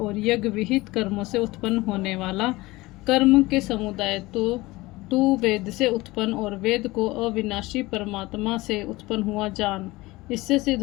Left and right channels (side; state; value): right; quieter; 20.5 dB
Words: यज्ञ विहित कर्मों से उत्पन्न होने वाला कर्म के समुदाय तो तू वेद से उत्पन्न और वेद को अविनाशी परमात्मा से उत्पन्न हुआ जान। इससे सिद्ध